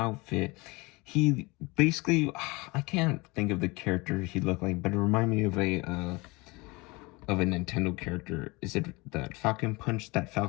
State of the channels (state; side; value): quieter; right; 24.8 dB